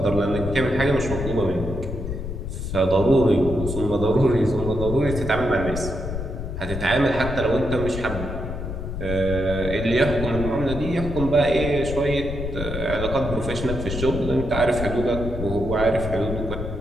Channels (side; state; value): left; noise; rumble, 6 dB below the sound